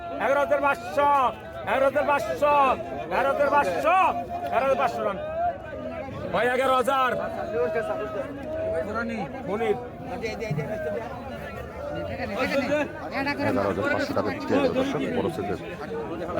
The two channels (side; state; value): both; identical; correlation 1.00